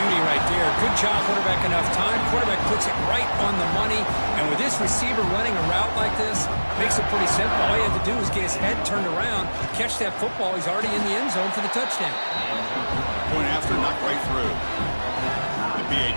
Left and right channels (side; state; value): both; inverted; correlation -1.00